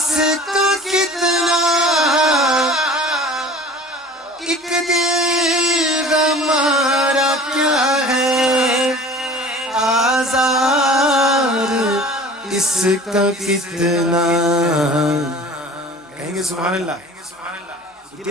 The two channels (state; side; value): normal; both; correlation 0.43